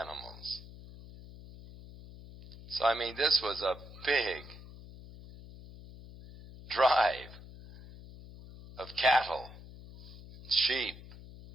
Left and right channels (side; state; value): left; noise; hum, 17 dB below the sound